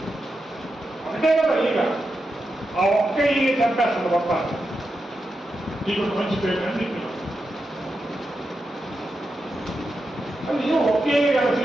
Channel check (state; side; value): normal; both; correlation 0.88